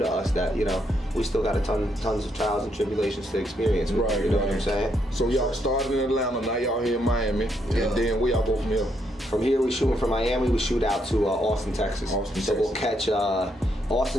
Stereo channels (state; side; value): normal; both; correlation 0.76